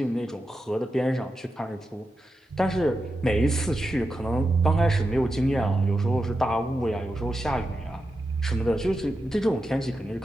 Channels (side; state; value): both; normal; correlation 0.89